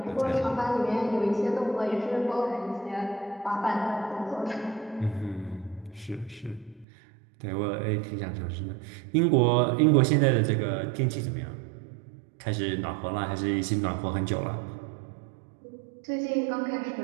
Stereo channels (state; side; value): drops out; left; at 6.9 s